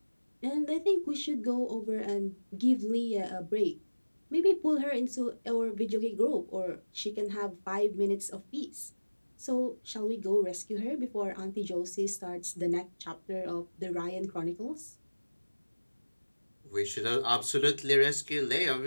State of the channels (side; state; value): both; inverted; correlation -1.00